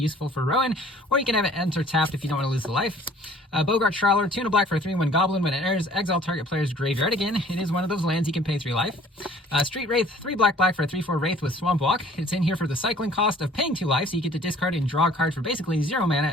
for Rowan, or you can have it enter tapped if you don't want to lose the life. Bogart Trawler, 2 black for a 3/1 goblin. When it enters, exile target player's graveyard. Again, it is one of those lands you can pay 3 life. Street Wraith, 3 black for a 3/4 Wraith with Swamp Walk. It's in here for the cycling cost of paying 2 life, so you get to discard and draw a card for basically 0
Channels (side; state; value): both; normal; correlation 0.53